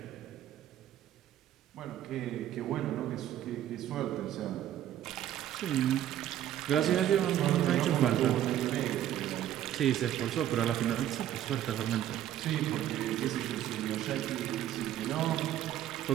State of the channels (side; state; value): left; quieter; 11.8 dB